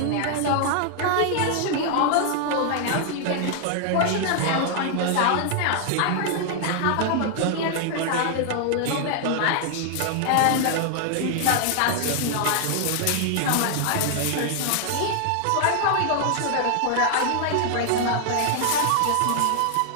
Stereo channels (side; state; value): both; different; correlation 0.00